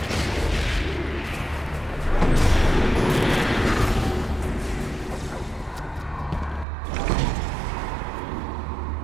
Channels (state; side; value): drops out; left; at 6.7 s